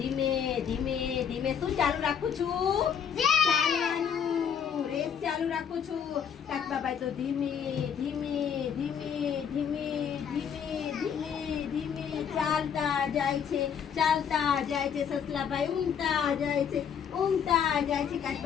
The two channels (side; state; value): right; quieter; 7.7 dB